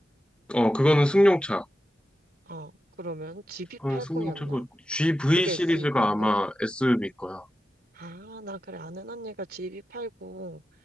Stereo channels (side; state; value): both; normal; correlation 0.91